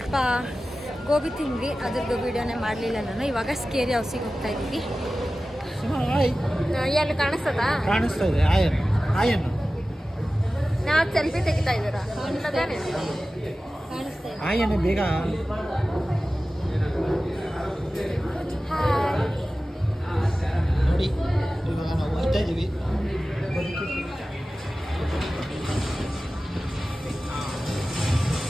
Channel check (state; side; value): normal; both; correlation 0.95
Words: ಗೋಬಿ ತಿಂದ್ವಿ, ಅದ್ರದ್ದು ವೀಡಿಯೋನೇ ಮಾಡಲಿಲ್ಲ ನಾನು. ಇವಾಗ ಸ್ಕೇರಿ ಹೌಸಿಗೆ ಹೋಗ್ತಾ ಇದ್ದೀವಿ. ಎಲ್ಲಿ ಕಾಣಿಸ್ತದ? ಕಾಣಿಸ್ತಾ ಇದೆ ಆಯನ್ ನಾವು ಸೆಲ್ಫಿ ತೆಗಿತಾ ಇದ್ದೀರಾ? ಕಾಣಿಸ್ತಾ ಇದೆ. ಆಯನ್ ಬೇಗ ನೋಡಿ. ಇವಾಗ ನಾವು ಹೋಗ್ತಾ ಇದ್ದೀವಿ.